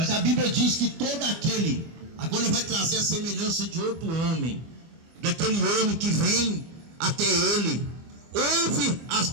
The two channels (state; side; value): late; left; 24 ms